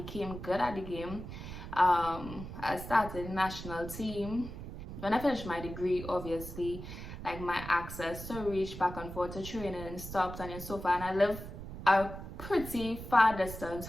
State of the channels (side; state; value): right; noise; rumble, 10 dB below the sound